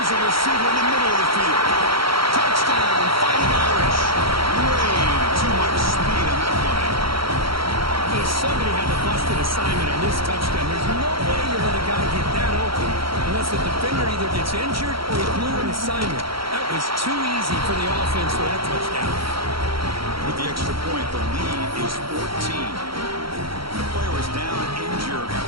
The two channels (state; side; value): late; left; 0.74 ms